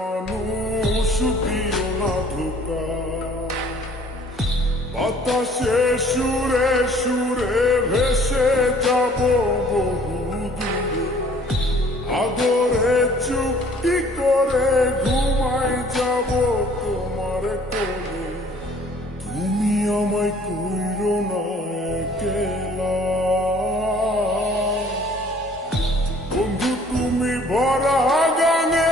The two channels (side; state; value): both; normal; correlation 0.55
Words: দিও না ধোকা। বাতাসে সুরে সুরে ভেসে যাব বহু দূরে, আদরে চুক্তি করে ঘুমাই যাব তোমার কোলে। তুমি আমায় কইরো না একলা, বন্ধু তুমি ভরা